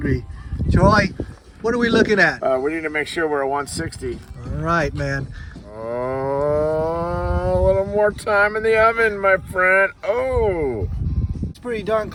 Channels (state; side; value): identical; both; correlation 1.00